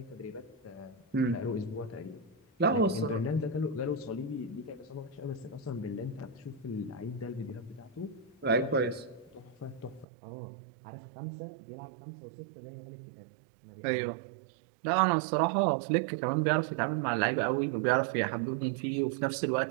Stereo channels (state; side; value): drops out; left; at 10.1 s